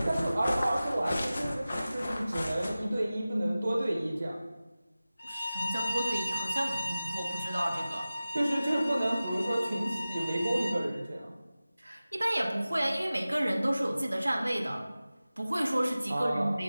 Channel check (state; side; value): inverted; both; correlation -0.96